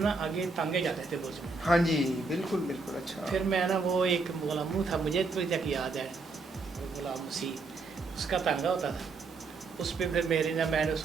आगे टांगे जाते थे बुर्ज में। हाँ जी बिल्कुल बिल्कुल। अच्छा, फिर मैं ना वो एक गुलामू था, मुझे तो तक याद है, गुलाम मसीह, उसका तांगा होता था, उस पर फिर मेरी ना मैंने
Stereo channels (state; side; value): quieter; left; 3.9 dB